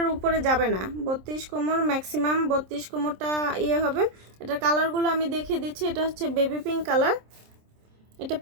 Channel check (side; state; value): left; late; 27 ms